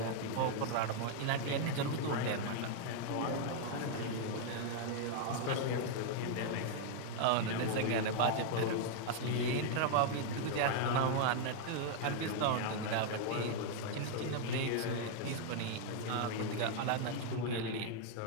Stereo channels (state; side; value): different; both; correlation 0.00